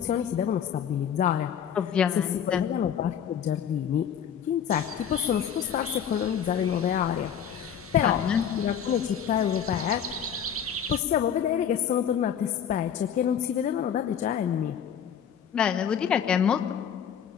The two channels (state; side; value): quieter; right; 8.5 dB